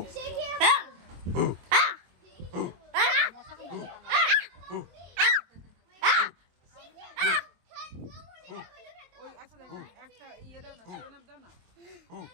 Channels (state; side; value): late; left; 23 ms